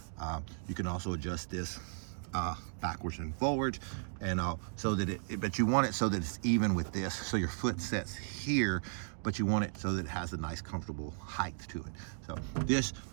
You can also adjust this backwards and forwards, and so that but you want it so that it's even with this. So your foot sets here, but you want it so that it has a nice comfortable height to it. So this,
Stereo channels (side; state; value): left; silent; digital silence